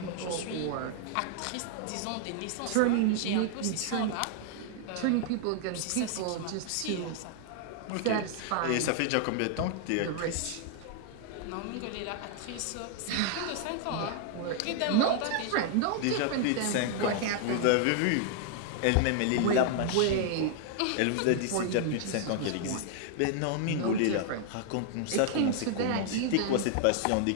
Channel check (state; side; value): different; both; correlation 0.00